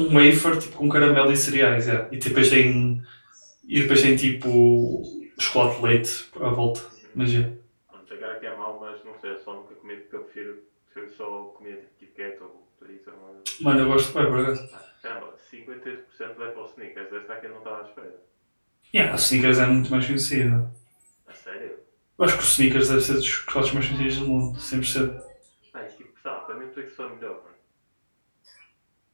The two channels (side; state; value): both; inverted; correlation -1.00